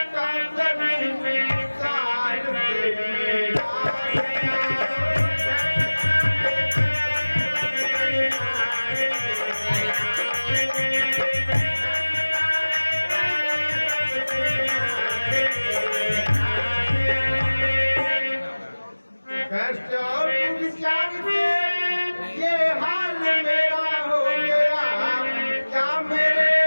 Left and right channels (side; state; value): both; inverted; correlation -1.00